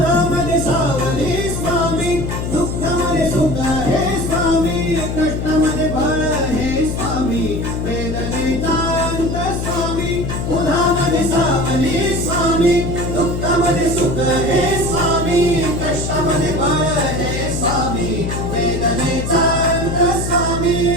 सावली स्वामी दुःखामध्ये सुख हे स्वामी कष्टामध्ये बळ हे स्वामी वेदनेचा अंत स्वामी उन्हामध्ये सावली स्वामी दुःखामध्ये सुख हे स्वामी कष्टामध्ये बळ हे स्वामी वेदनेचा अंत स्वामी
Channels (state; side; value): noise; left; hum, 3 dB below the sound